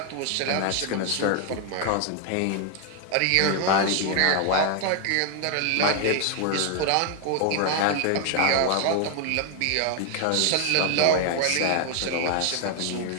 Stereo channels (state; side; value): different; both; correlation 0.00